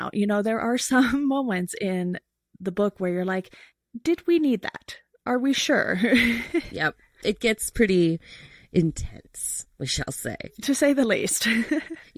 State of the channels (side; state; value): both; identical; correlation 1.00